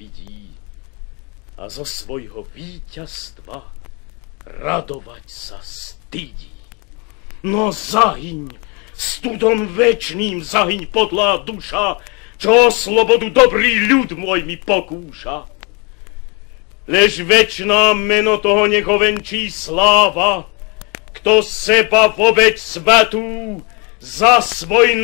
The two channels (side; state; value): right; quieter; 31.2 dB